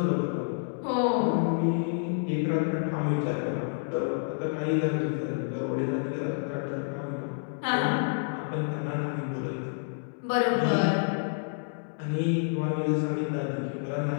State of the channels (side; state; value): right; silent; digital silence